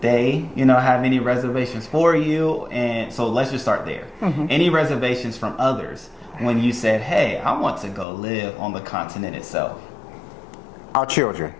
they, you know, have any reservations for you? And so let's just start there. Any reservations from others when you said, hey, I want to go live on the continent itself? Our children.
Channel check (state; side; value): drops out; right; at 8.1 s